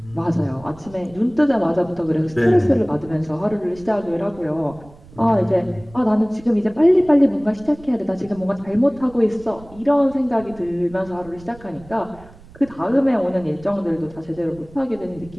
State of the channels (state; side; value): noise; right; rumble, 21 dB below the sound